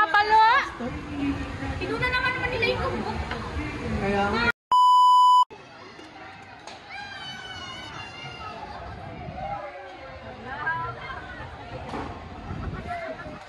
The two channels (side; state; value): both; identical; correlation 1.00